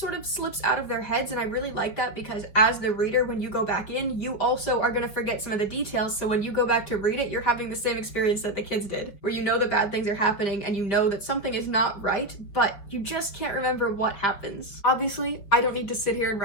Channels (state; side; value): late; right; 5.1 ms